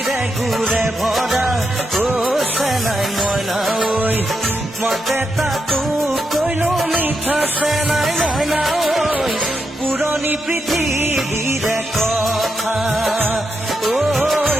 গুৰে ভৰা চেনাই মইনা ঐ মতে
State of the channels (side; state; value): both; normal; correlation 0.84